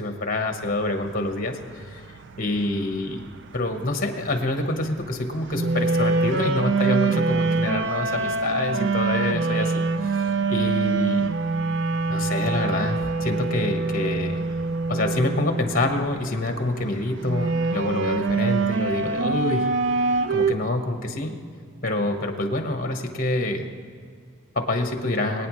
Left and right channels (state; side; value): normal; both; correlation 0.35